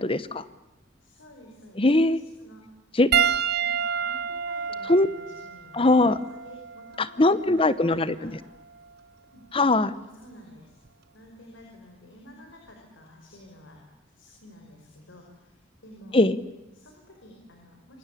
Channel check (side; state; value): both; normal; correlation 0.43